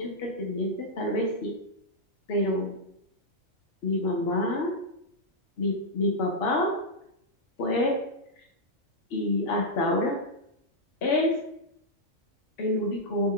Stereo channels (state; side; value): normal; both; correlation -0.06